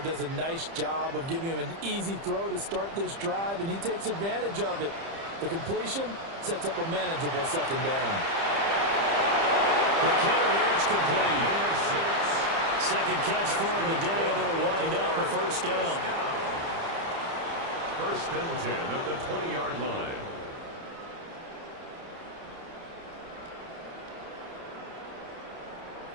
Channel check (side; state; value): left; late; 30 ms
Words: does a nice job of giving him an easy throw to start this drive, and he takes advantage of it. The completion sets up a manageable second down. McKinnon here, it's complete. Second catch for him today, and it'll wind up a first down. First and 10 at the 20-yard line.